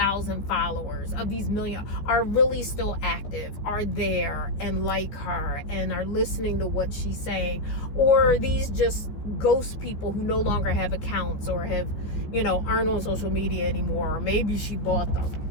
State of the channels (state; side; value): late; right; 14 ms